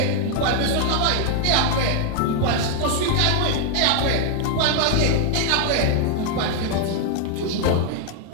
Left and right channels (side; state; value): both; different; correlation 0.00